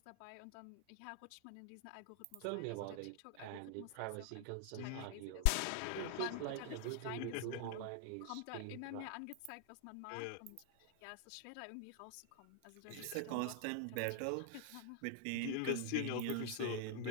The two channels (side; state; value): both; different; correlation 0.00